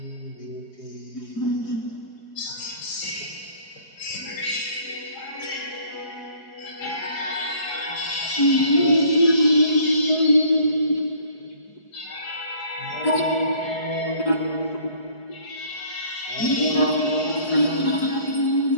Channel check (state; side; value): late; right; 4.7 ms